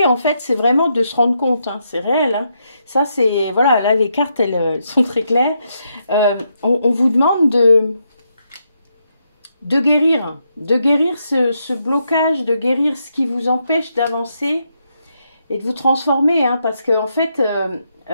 en fait, c'est vraiment de se rendre compte. Hein, c'est réel. Hein. Ça, c'est... Voilà, là, les cartes, elles sont très claires. On vous demande de guérir ce blocage, de guérir ce qui vous empêche d'avancer et de vous transformer, hein, parce que en fait,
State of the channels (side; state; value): both; inverted; correlation -0.80